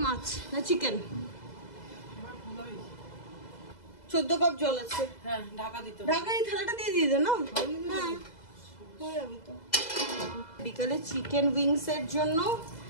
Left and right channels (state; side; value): late; right; 2.0 ms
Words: মাছ না চিকেন? 14 কাপ জল আছে। হ্যাঁ ঢাকা দিতে হবে। ঢাকা এই থালাটা দিয়ে দিয়ে দে না। হ্যাঁ হয়ে যাবে তো। বিকালে চিকেন উইংস এর জন্য